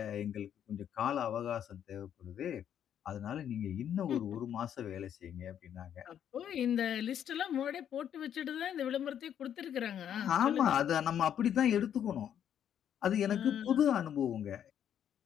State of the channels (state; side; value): quieter; right; 9.5 dB